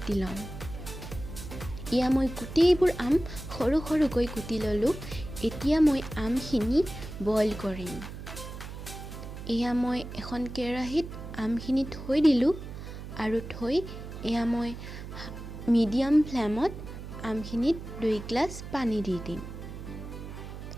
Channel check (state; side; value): noise; right; hum, 10 dB below the sound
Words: ল'ম। এয়া মই গোটেইবোৰ আম সৰু সৰুকৈ কুটি ল'লোঁ। এতিয়া মই আমখিনি বইল কৰিম। এয়া মই এখন কেৰাহীত আমখিনি থৈ দিলোঁ আৰু এয়া মই মিডিয়াম ফ্লেমত আমখিনিত 2 গ্লাছ পানী দি দিম।